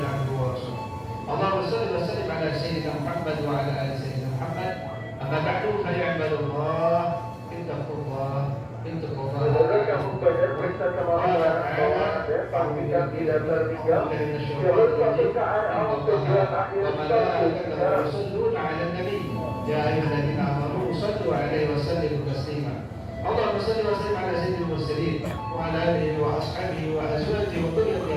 abduhu wa rasuluh. Allahumma shalli wa sallim ala sayyidina Muhammad wa ala ali sayyidina Muhammad. Amma ba'du fa ya ibadallah, ittaqullah, ittaqullah. Kamu belajar periksa kemampuan pastikan tidak tertinggal jalur pemeriksaan awal tujuan akhir Rasulullah ala nabi ya ayyuhalladzina amanu sallu alaihi wa sallimu taslima. Allahumma salli wa sallim ala sayyidil mursalin wa ala alihi wa ashabihi wa azwajihi wa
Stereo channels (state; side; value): identical; both; correlation 1.00